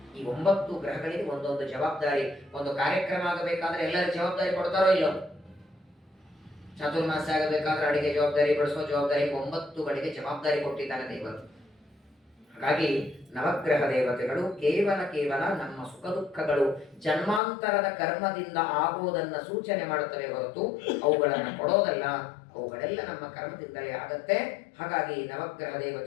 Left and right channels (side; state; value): right; drops out; at 17.4 s